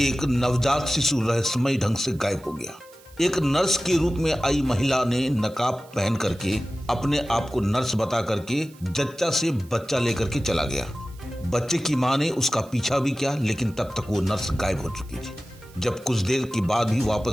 नवजात शिशु रहस्यमय ढंग से गायब हो गया। एक नर्स के रूप में आई महिला ने नकाब पहन करके अपने आप को नर्स बता करके जच्चा से बच्चा लेकर के चला गया। बच्चे की मां ने उसका पीछा भी किया, लेकिन तब तक वो नर्स गायब हो चुकी थी। जब कुछ देर के बाद भी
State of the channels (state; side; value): noise; right; hiss, 26 dB below the sound